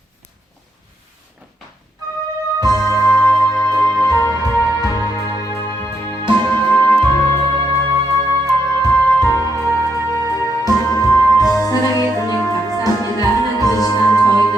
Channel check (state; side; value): normal; both; correlation 0.78